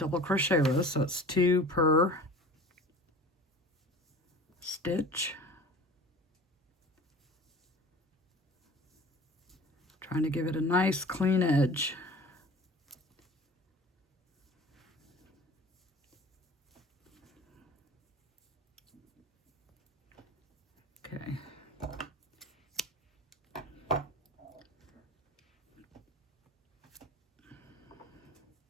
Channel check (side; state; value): both; normal; correlation 0.41